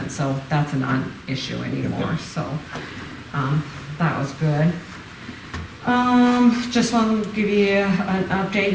so that's a non-issue anymore, so, that was good. Just want to give you an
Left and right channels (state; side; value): identical; both; correlation 1.00